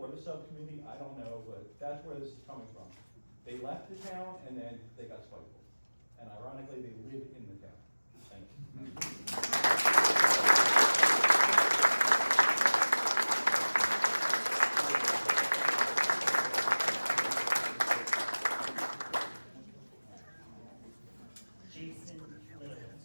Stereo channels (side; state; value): both; inverted; correlation -1.00